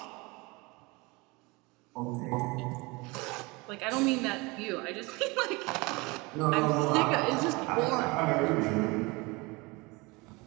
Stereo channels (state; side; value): quieter; left; 25.2 dB